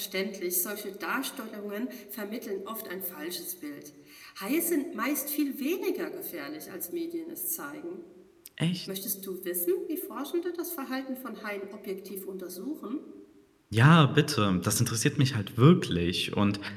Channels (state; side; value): identical; both; correlation 1.00